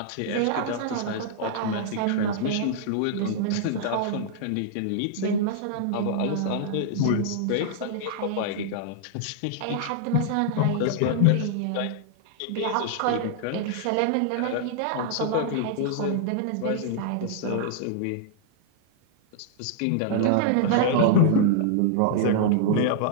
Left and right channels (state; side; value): different; both; correlation -0.01